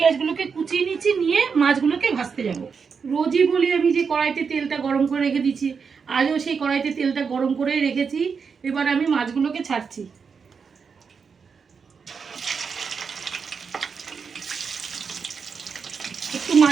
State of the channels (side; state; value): left; quieter; 5.8 dB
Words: কুচিয়ে নিচ্ছি, নিয়ে মাছগুলোকে ভাজতে যাব। রোজই বলি আমি যে কড়াইতে তেলটা গরম করে রেখে দিচ্ছি, আজও সেই কড়াইতে তেলটা গরম করেই রেখেছি। এবার আমি মাছগুলোকে ছাড়ছি। একটু